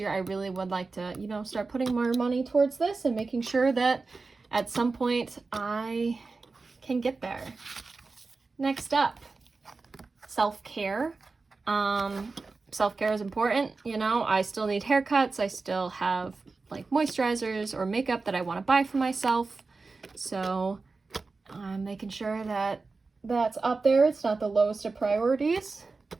I really would like to, start putting more money towards this and making sure that at some point I can get there. Next up, self-care. Self-care is important. I still need haircuts. I still have like moisturizers or makeup that I want to buy for myself. So I'm making sure that that's up there. It's not the lowest of priorities.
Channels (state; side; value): quieter; left; 4.0 dB